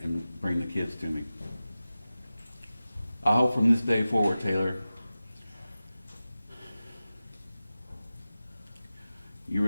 and bring the kids to me. I hope from this day forward, Taylor, you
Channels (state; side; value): inverted; both; correlation -0.95